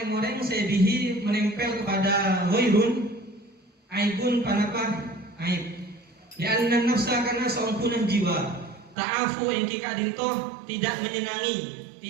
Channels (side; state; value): left; drops out; at 9.0 s